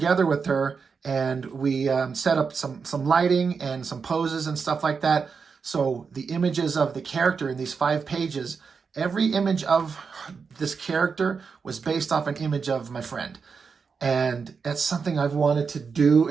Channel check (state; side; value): quieter; left; 5.5 dB